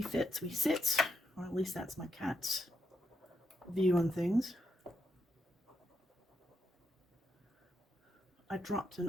fit, we sit. Or at least that's my cat's view on things. I dropped an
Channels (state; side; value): normal; both; correlation 0.81